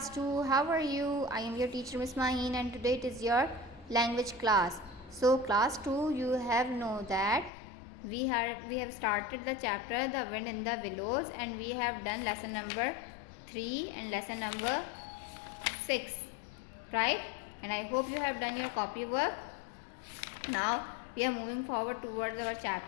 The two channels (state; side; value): drops out; right; at 7.5 s